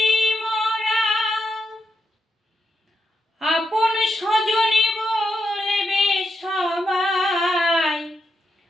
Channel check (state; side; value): normal; both; correlation 0.84